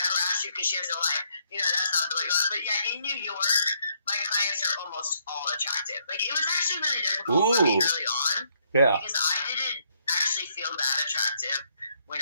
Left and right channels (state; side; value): inverted; both; correlation -0.71